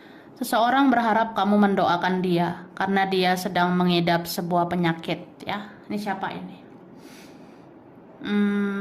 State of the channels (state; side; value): identical; both; correlation 1.00